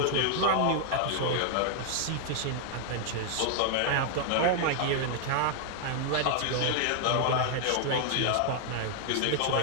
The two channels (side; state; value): both; different; correlation 0.00